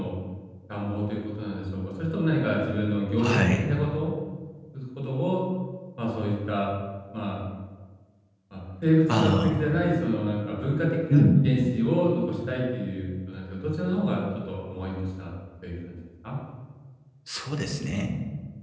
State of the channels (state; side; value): identical; both; correlation 1.00